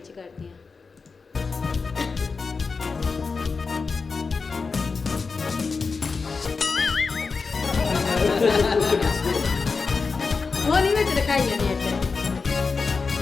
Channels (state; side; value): quieter; right; 4.7 dB